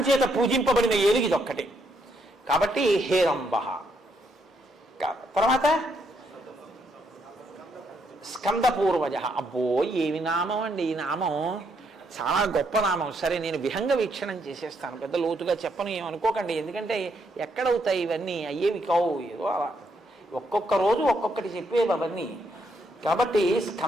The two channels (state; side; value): normal; both; correlation 0.75